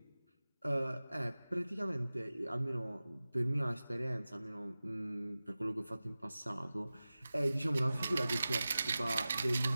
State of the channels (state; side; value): inverted; both; correlation -0.96